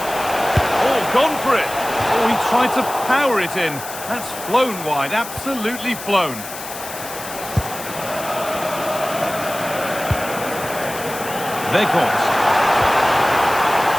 gone for it. Oh, he tried to power it in. That's flown wide, absolutely flown. Weghorst.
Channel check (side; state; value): left; noise; hiss, 11 dB below the sound